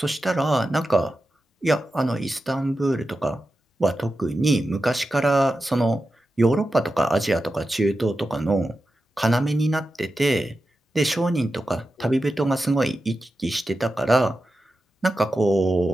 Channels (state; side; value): normal; both; correlation 0.91